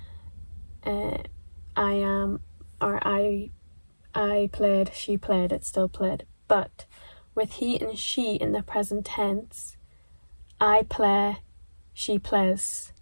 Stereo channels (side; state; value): both; inverted; correlation -1.00